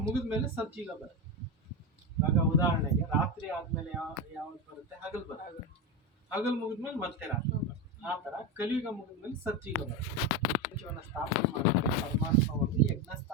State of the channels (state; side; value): normal; both; correlation 0.15